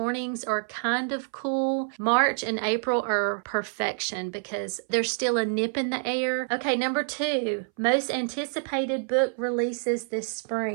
are kind of cool. March and April are perfection because there's still a nip in the air. Okay, number 2, most anticipated book releases this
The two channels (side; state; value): left; silent; 60 dB below the other